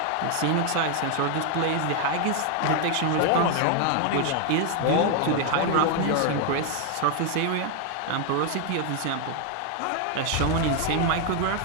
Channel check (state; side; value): different; both; correlation 0.01